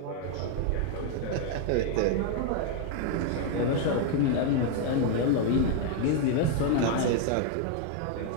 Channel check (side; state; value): both; different; correlation 0.00